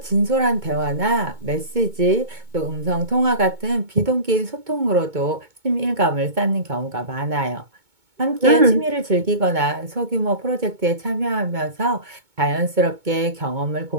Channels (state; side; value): late; left; 2.2 ms